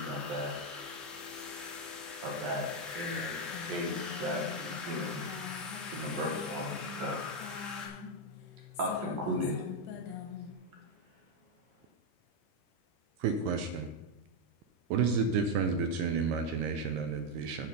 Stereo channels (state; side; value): normal; both; correlation 0.04